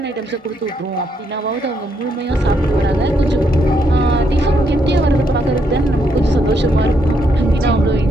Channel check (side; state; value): both; normal; correlation 0.76